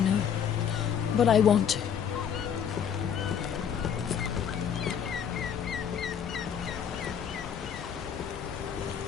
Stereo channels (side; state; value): right; quieter; 8.0 dB